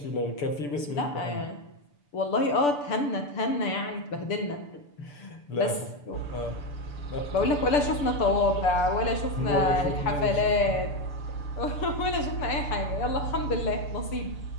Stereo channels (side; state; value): right; late; 6.9 ms